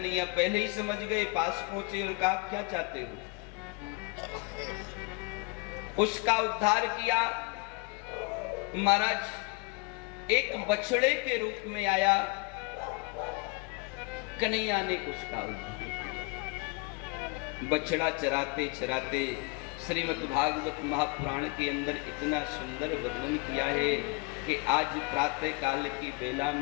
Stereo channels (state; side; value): quieter; right; 29.3 dB